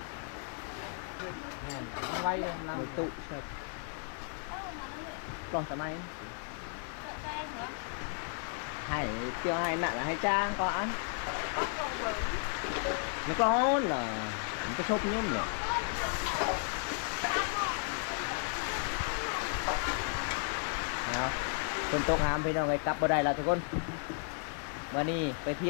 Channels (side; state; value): right; silent; 55 dB below the other